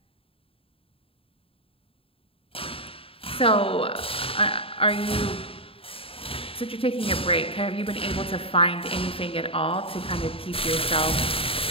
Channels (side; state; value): right; late; 0.27 ms